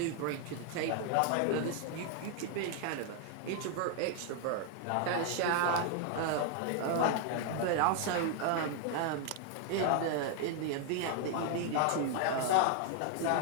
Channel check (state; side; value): different; both; correlation 0.00